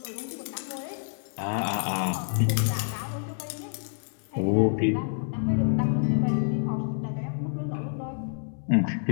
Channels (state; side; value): silent; right; 59 dB below the other